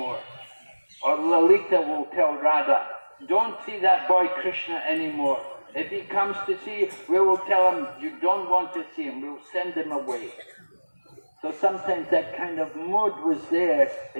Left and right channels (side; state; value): both; inverted; correlation -1.00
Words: Or Lalita will tell Radha, "Don't see that boy Krishna anymore. If he comes to see you, we will tell him you don't want to see him. We'll send him away." So sometimes that kind of mood was there